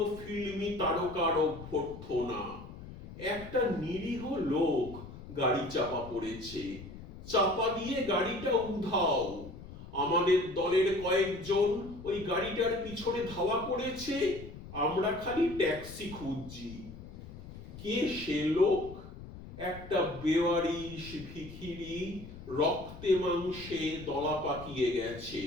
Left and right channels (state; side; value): noise; left; rumble, 14 dB below the sound